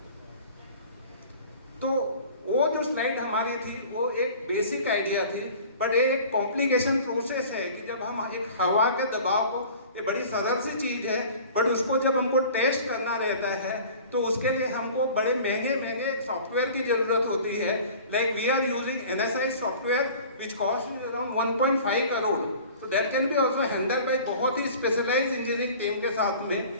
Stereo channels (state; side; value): inverted; both; correlation -0.44